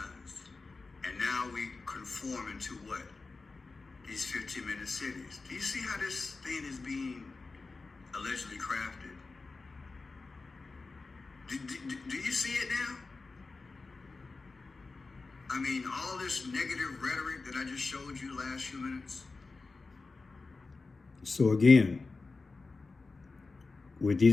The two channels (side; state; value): right; quieter; 3.9 dB